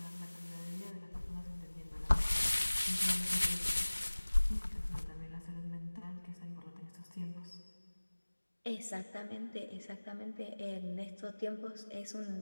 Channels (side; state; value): both; inverted; correlation -1.00